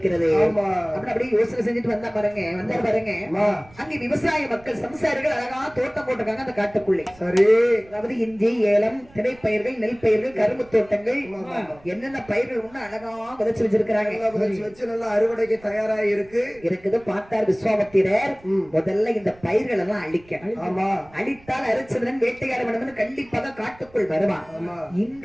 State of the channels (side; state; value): right; noise; rumble, 25 dB below the sound